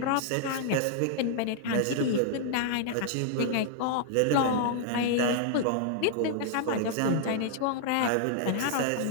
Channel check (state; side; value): different; both; correlation -0.01